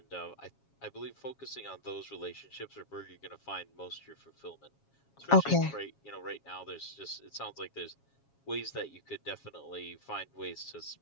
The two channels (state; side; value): late; right; 7.3 ms